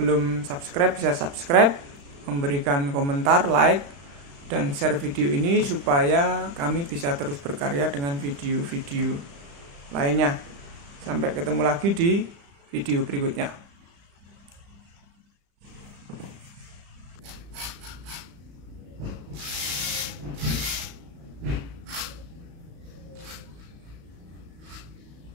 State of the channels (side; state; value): left; late; 35 ms